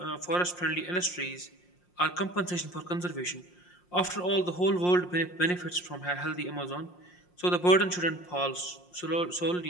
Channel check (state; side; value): late; right; 5.6 ms